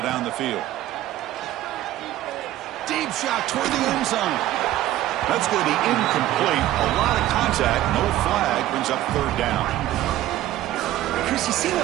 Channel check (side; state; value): left; quieter; 14.3 dB